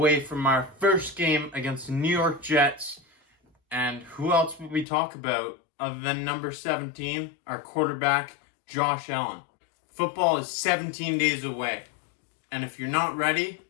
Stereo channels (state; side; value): drops out; right; at 4.9 s